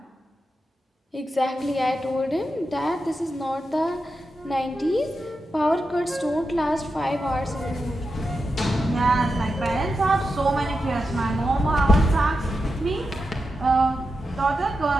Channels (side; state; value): both; normal; correlation 0.88